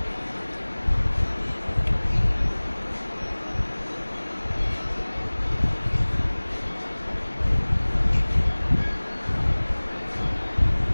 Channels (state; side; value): inverted; both; correlation -1.00